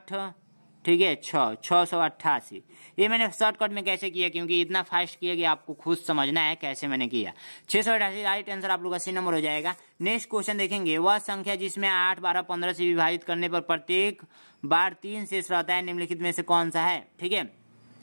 ठीक है 688। ये मैंने शॉर्टकट में कैसे किया, क्योंकि इतना फास्ट किया कि आपको खुद समझना है कैसे मैंने किया। 688 राइट आंसर आप लोग का सी नंबर हो जाएगा। नेक्स्ट क्वेश्चन देखेंगे, वह संख्या जिसमें 8, 12, 15 से विभाजित करने पर प्रत्येक बार 3 शेष रहता है, निम्नलिखित में से कौन सा है। ठीक है,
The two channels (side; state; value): both; inverted; correlation -1.00